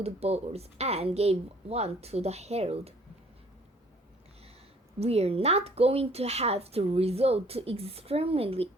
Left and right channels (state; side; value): normal; both; correlation 0.57